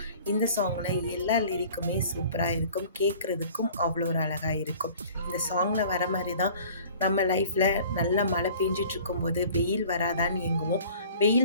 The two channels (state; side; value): inverted; both; correlation -0.48